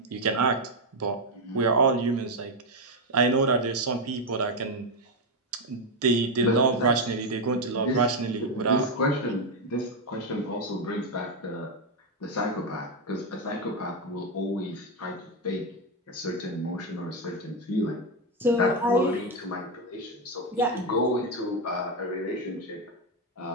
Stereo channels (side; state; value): both; normal; correlation 0.06